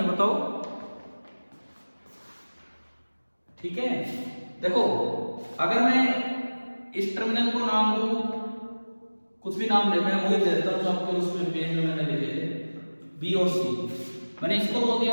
बताओ। ठीक है, देखो अगर मैं इस टर्मिनल को नाम दूं, कुछ भी नाम दे, मैं वही दे देता हूं आपके उसमें पेज में मैंने लिखे थे बी और सी। मैंने इसको बोल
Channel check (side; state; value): both; inverted; correlation -1.00